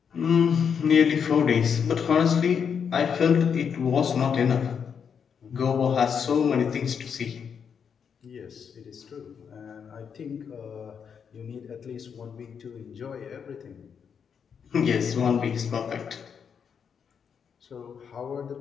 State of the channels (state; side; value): quieter; right; 7.0 dB